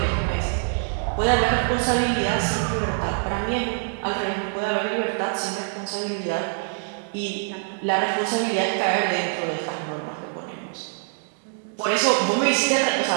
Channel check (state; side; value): silent; left; digital silence